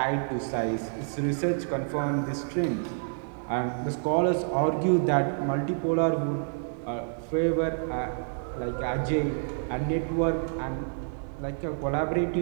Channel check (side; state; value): left; silent; digital silence